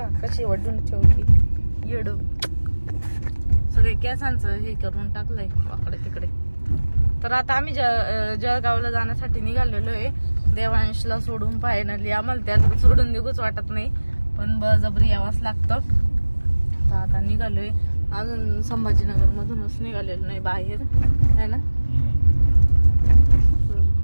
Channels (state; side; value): inverted; both; correlation -1.00